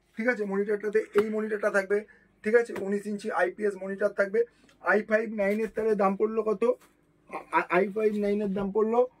ঠিক আছে মনিটরটাতে। এই মনিটরটা থাকবে, ঠিক আছে। 19 ইঞ্চি IPS মনিটর থাকবে। i5 9 এর তাহলে দাম পড়লো কত? i5 9 এর দাম পড়লো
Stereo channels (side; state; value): both; identical; correlation 1.00